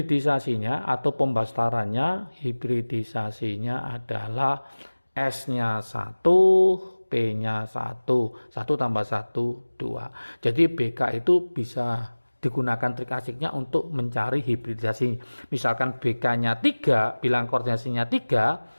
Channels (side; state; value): both; inverted; correlation -1.00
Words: atau pembastarannya, hibridisasinya adalah S-nya 1, P-nya 1, 1 tambah 1, 2. Jadi BK itu bisa digunakan trik asiknya untuk mencari hibridisasi. Misalkan BK-nya 3, bilang koordinasinya